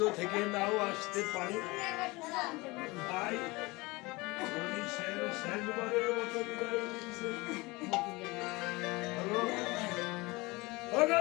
থেকে নাও আসতে পারে। তাই তরুণী সেন শেষবারের মতো বিদায় নিচ্ছে। ওগো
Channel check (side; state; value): right; quieter; 23.5 dB